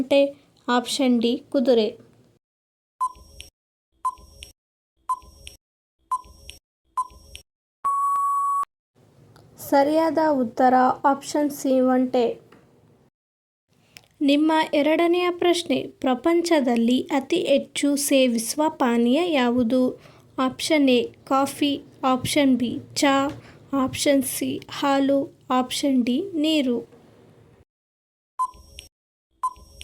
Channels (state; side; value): identical; both; correlation 1.00